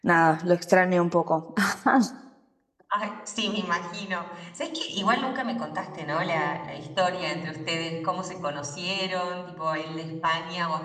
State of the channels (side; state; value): both; identical; correlation 1.00